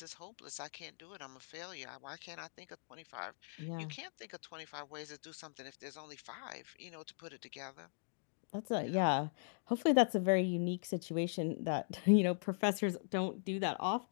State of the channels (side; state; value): right; silent; digital silence